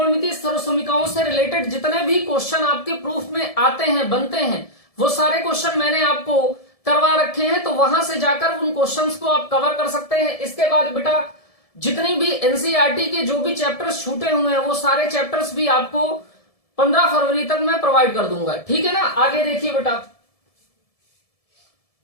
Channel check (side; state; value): right; late; 1.7 ms